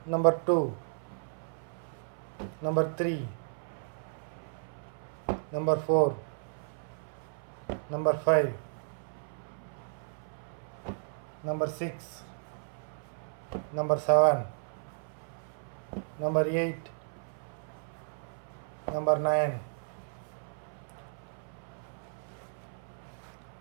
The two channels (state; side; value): silent; left; 55 dB below the other